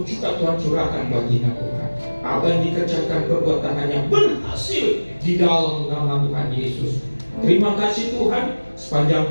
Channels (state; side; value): inverted; both; correlation -1.00